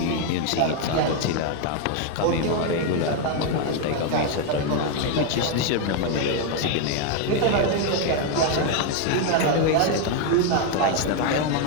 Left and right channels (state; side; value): different; both; correlation 0.01